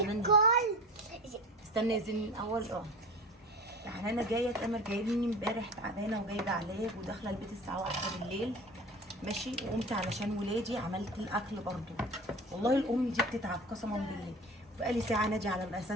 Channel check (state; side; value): normal; both; correlation 0.36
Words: استنى يا زين الاول. يعني انا جايه تامر جايبني امبارح تعبانه وجايبه علاج وداخله البيت الساعه 1 بالليل ماشي، وقمت علشان ولادي عملت الاكل برضو. والله الام دي بتتعب قسما بالله. بقالي ساعه نادي على